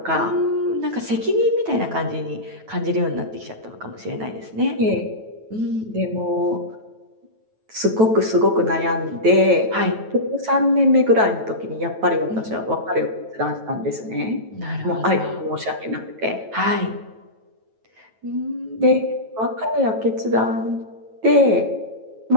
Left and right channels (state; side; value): late; left; 9.2 ms